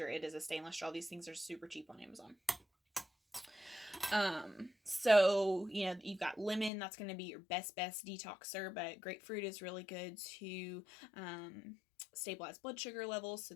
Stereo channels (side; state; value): right; drops out; at 6.7 s